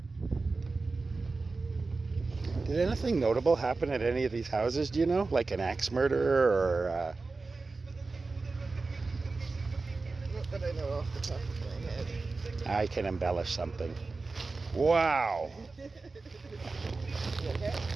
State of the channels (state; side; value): quieter; left; 3.8 dB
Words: Did anything notable happen at any of these houses, do you know? Like an axe murder or... Not that I know off the top of my head. I can embellish something. Wow! You okay?